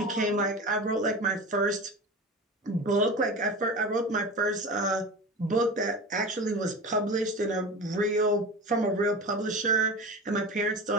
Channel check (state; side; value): normal; both; correlation 0.31